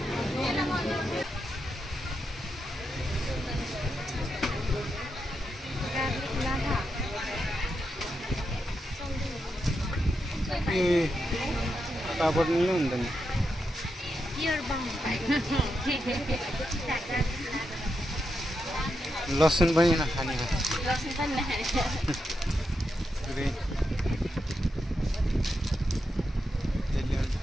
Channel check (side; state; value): both; normal; correlation 0.85